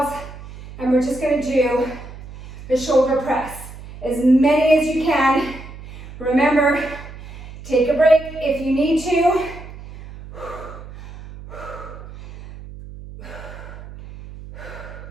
and we're just going to do the shoulder press. As many as you can. Remember, take a break if you need to.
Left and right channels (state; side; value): noise; right; hum, 15 dB below the sound